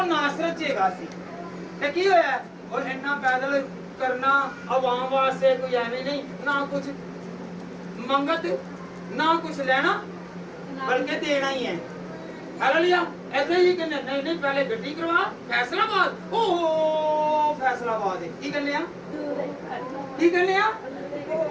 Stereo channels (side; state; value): both; identical; correlation 1.00